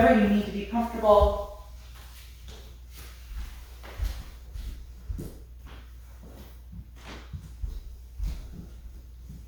you need to be comfortable.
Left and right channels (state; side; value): identical; both; correlation 1.00